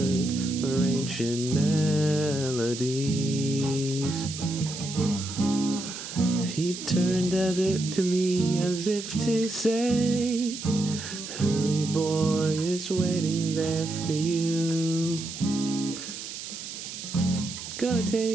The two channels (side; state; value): right; noise; hiss, 9 dB below the sound